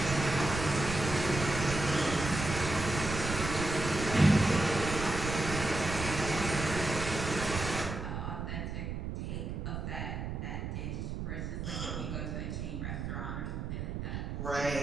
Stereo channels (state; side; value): noise; right; rumble, 4 dB below the sound